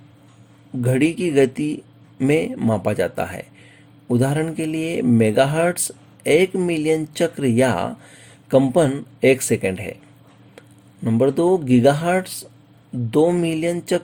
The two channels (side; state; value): both; identical; correlation 1.00